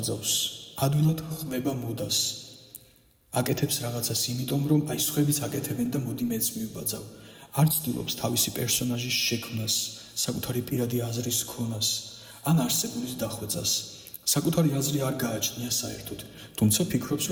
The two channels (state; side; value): identical; both; correlation 1.00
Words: ადვილად ხმება მოდას. აკეთებს რაღაცას იმიტომ, რომ აი სხვებიც აკეთებენ და მოდი მეც მივბაძავ. არ ცდილობს თავისი პერსონაჟის შექმნას, საკუთარი პირადი აზრის ქონას, ან არსებულის დახვეწას. საკუთარი აზრი არ გააჩნია საერთოდ, თუმცა ფიქრობს,